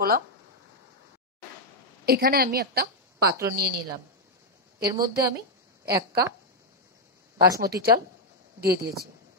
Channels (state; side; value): normal; both; correlation -0.01